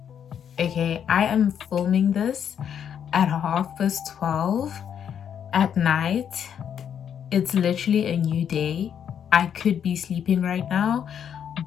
Okay, I am filming this at 12:30 at night. It's literally a new day. I could be sleeping right now,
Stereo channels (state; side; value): quieter; right; 8.5 dB